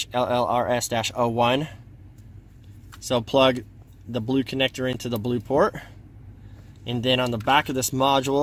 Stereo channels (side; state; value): both; identical; correlation 1.00